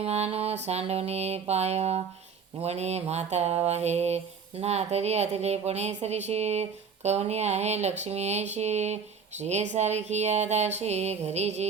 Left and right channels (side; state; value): left; quieter; 6.1 dB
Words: सांडवणे पाय, वणे माता वाहे, ना तरी अतिलेपणे सरीशी, कवनी आहे लक्ष्मी ऐशी, श्री सारखी दाशी, घरी